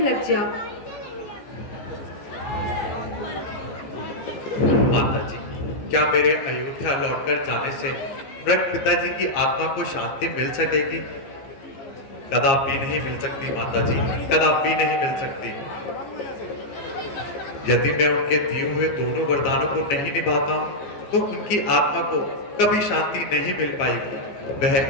जाओ। माता जी, क्या मेरे अयोध्या लौटकर जाने से मृत पिताजी की आत्मा को शांति मिल सकेगी? कदापि नहीं मिल सकती माता जी, कदापि नहीं मिल सकती। यदि मैं उनके दिए हुए दोनों वरदानों को नहीं निभाता हूं तो उनकी आत्मा को कभी शांति नहीं मिल पाएगी।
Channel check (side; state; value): right; late; 15 ms